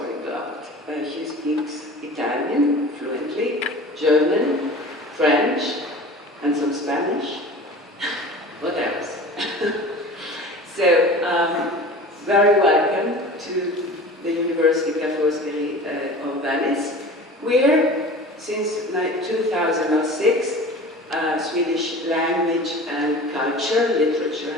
She speaks Italian fluently, German, French, and some Spanish. What else? So, very welcome to the University Ca' Foscari of Venice, where since 2006, Swedish language and culture, literature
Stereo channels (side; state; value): both; normal; correlation 0.38